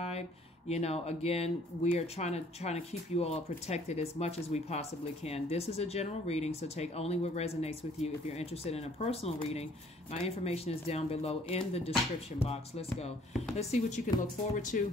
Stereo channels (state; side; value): normal; both; correlation 0.59